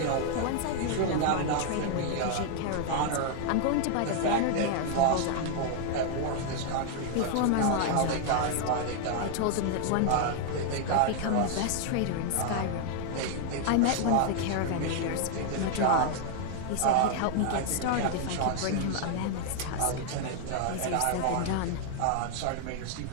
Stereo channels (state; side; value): different; both; correlation 0.00